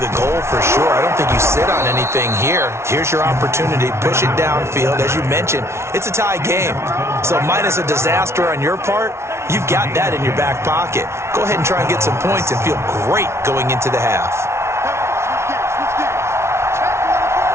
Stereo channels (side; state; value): left; late; 0.13 ms